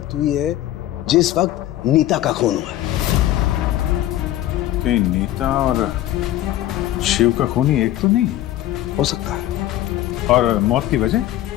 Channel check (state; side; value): quieter; right; 13.8 dB